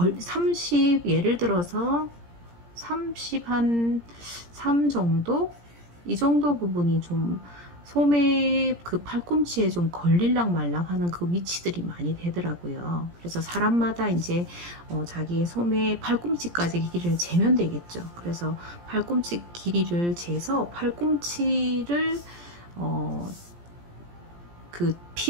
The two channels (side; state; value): left; late; 17 ms